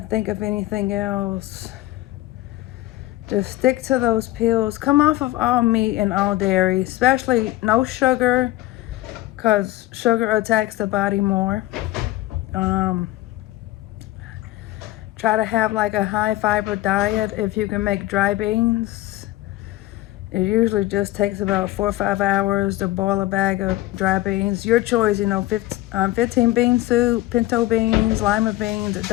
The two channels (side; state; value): right; quieter; 17.1 dB